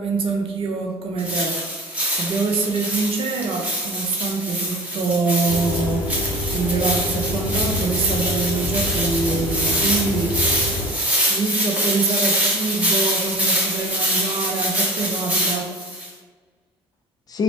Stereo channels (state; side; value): normal; both; correlation 0.39